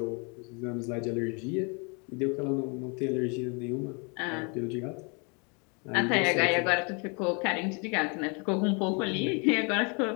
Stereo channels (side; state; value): right; quieter; 33.7 dB